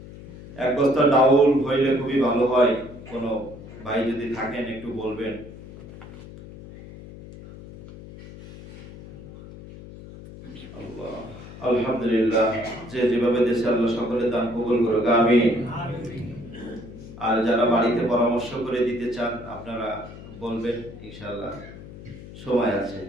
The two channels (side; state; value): left; noise; hum, 16 dB below the sound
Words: এক বস্তা ডাউল হইলে খুবই ভালো হয়। কোনো ভাই যদি থাকেন একটু বলবেন। আল্লাহ, আলহামদুলিল্লাহ। যে যেভাবে দেশে আল্লাহ সকলে দান কবুল করুক, আমিন। আর যারা বাড়িতে পরামর্শ করে দিতে চান আপনারা বলবেন, ইনশাআল্লাহ সময় আছে।